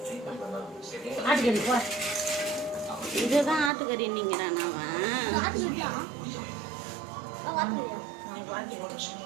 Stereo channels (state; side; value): drops out; left; at 3.7 s